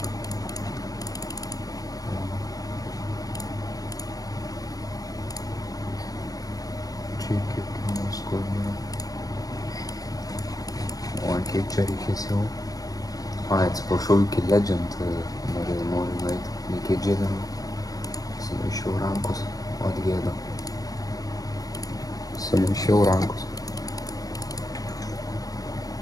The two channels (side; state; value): right; late; 0.18 ms